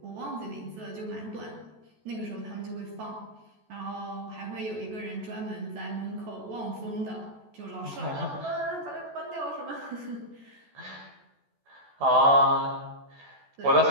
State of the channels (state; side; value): late; left; 14 ms